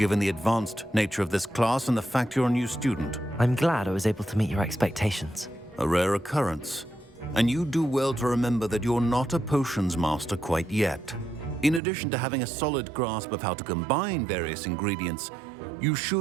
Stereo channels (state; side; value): drops out; left; at 11.8 s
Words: the advanced nature of this class and the fact you're a new student. I'm glad I was able to meet your expectations. A rare occurrence. And you do well to remember that you're not a potions master quite yet. In addition to having a solid grasp of how to combine various ingredients, you